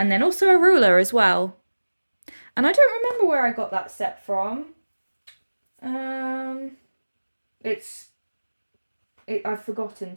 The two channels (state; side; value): inverted; both; correlation -1.00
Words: then also a ruler as well. And I don't remember where I got that set from. Um, I've forgotten,